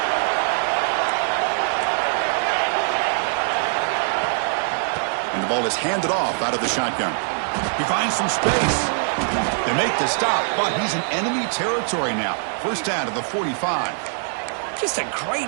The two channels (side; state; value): left; silent; digital silence